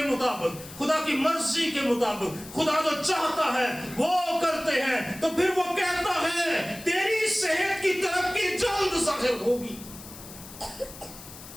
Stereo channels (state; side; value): noise; left; hiss, 16 dB below the sound